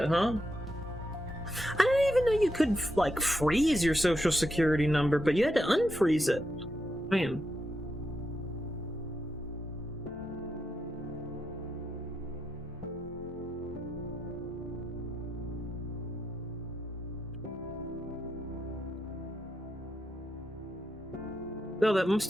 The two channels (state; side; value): normal; both; correlation 0.84